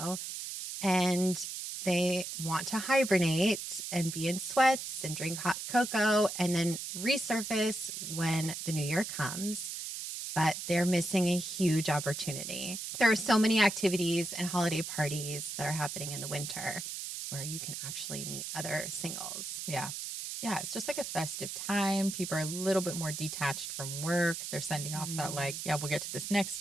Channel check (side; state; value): right; noise; hiss, 6 dB below the sound